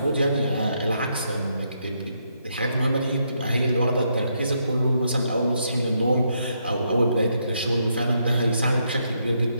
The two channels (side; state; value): both; inverted; correlation -0.77